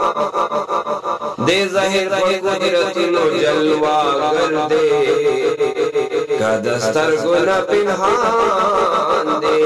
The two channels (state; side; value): identical; both; correlation 1.00